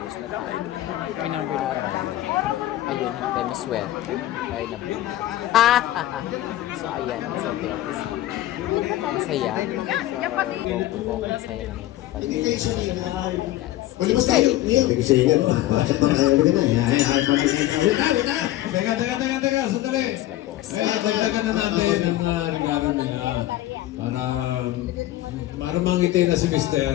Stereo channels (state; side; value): quieter; right; 15.0 dB